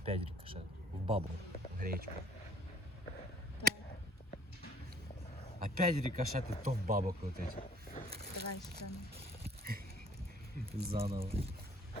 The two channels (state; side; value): normal; both; correlation 0.55